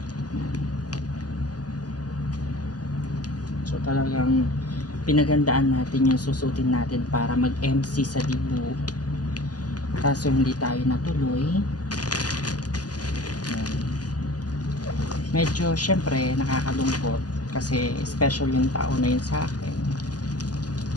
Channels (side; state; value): right; late; 0.68 ms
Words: So talagang pinagandaan natin yung susutin natin para mag-MC sa Dibu. Kaso hindi tayo natuloy. Medyo syempre nakakalungkot kasi special yung tao na yun sa akin.